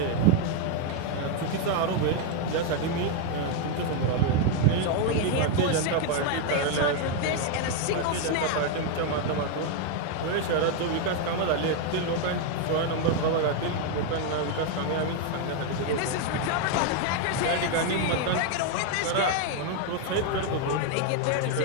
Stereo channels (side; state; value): both; different; correlation 0.01